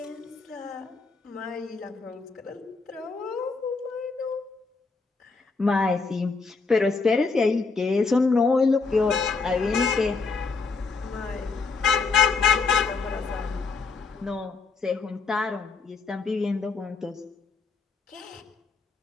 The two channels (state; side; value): quieter; right; 4.4 dB